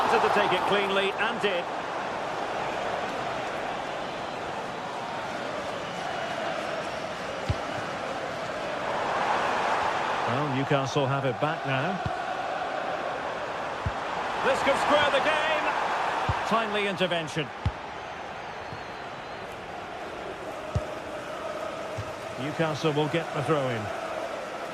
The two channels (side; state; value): both; identical; correlation 1.00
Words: to take it cleanly and did. Well, Newcastle have it back now. This could square the game. Timely intervention. Newcastle will get the throw-in.